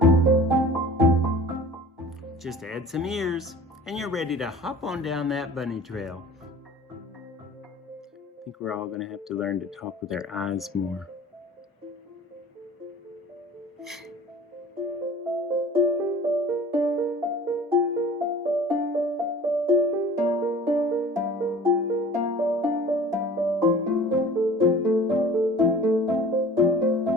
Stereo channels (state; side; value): normal; both; correlation 0.44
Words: Just add some ears, and you're ready to hop on down that bunny trail. I think we're all going to have to learn to talk with our eyes more.